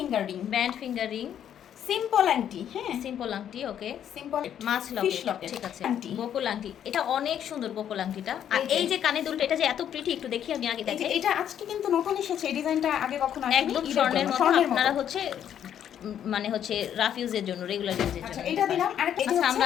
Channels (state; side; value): quieter; right; 9.7 dB